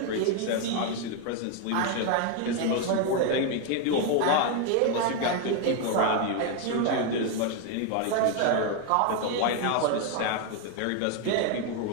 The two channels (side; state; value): both; different; correlation 0.01